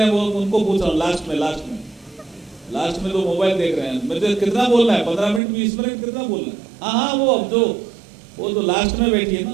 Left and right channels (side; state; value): left; drops out; at 5.4 s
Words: हैं वो उनको पूछ रहा हूँ, लास्ट में जो मोबाइल देख रहे हैं, मुझे कितना बोलना है? 15 मिनट 20 मिनट कितना बोलना है? हाँ, वो जो लास्ट में बैठी है